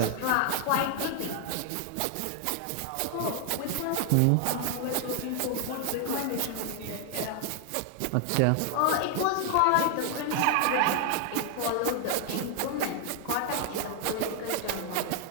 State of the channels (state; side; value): different; both; correlation 0.00